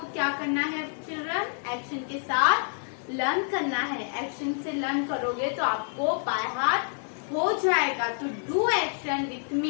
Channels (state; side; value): silent; right; 59 dB below the other